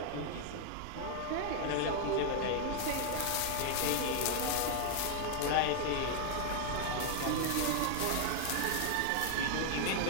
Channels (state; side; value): different; both; correlation 0.00